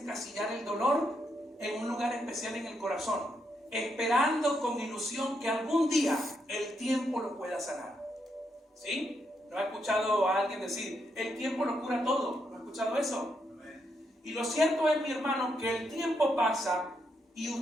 el dolor en un lugar especial en el corazón, esperando con ilusión que algún día el tiempo lo pueda sanar. ¿Sí? ¿No ha escuchado a alguien decir, el tiempo lo cura todo? No es escuchado eso? Y lo cierto es, mi hermano, que el tiempo pasa y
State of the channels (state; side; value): normal; both; correlation 0.79